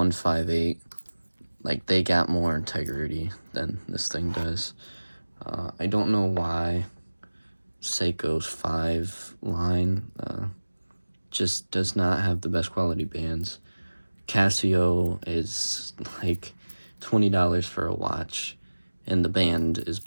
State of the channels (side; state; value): both; inverted; correlation -1.00